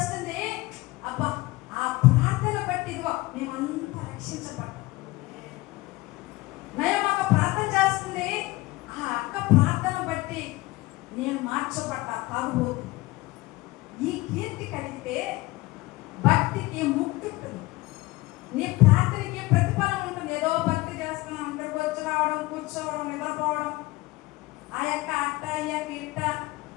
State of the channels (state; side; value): quieter; right; 20.5 dB